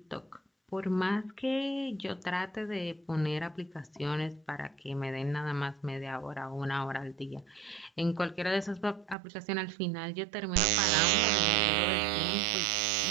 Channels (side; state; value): left; drops out; at 9.2 s